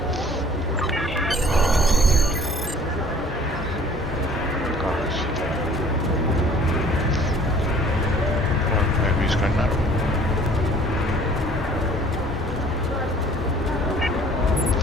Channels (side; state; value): both; normal; correlation 0.52